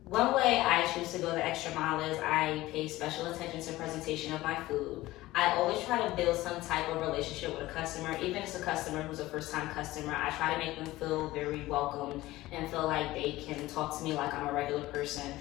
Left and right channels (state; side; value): quieter; right; 17.5 dB